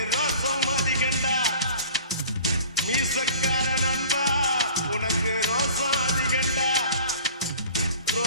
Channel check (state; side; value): inverted; both; correlation -0.45